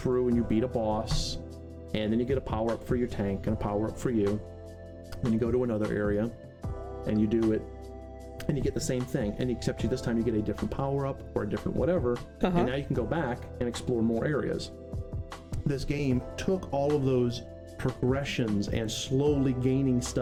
and you beat a boss, and then you get a power-up for your tank and a power-up for you. Then you go to another area, and you do it, and you get the same thing, and except this time you get a different power-up or a different whatever, and now you can go back and explore more areas. This game took all of those progressions and slowly gaining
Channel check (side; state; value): both; identical; correlation 1.00